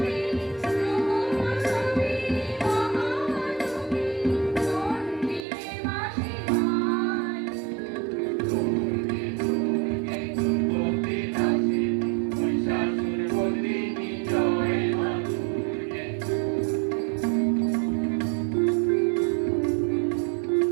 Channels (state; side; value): drops out; left; at 5.5 s